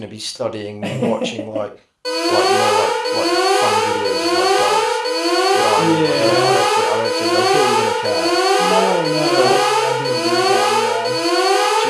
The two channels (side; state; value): both; identical; correlation 1.00